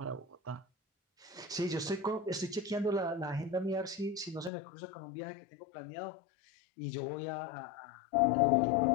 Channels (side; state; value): right; drops out; at 4.5 s